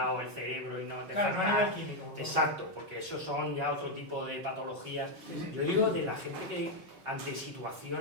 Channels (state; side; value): late; left; 5.3 ms